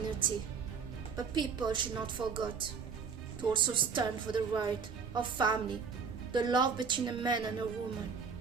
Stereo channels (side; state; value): left; quieter; 5.8 dB